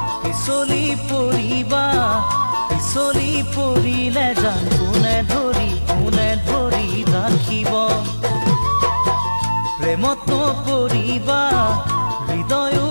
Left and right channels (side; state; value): both; inverted; correlation -1.00